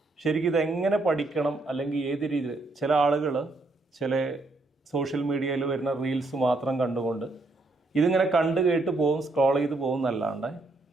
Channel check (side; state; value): left; quieter; 3.1 dB